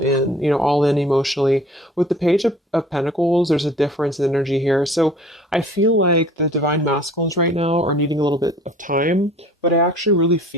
emotionally. With the Page of Pentacles, there's a difference in energy here. So I feel like the Divine Masculines right now are needing a little bit of time, but I actually really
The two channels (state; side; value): normal; both; correlation 0.49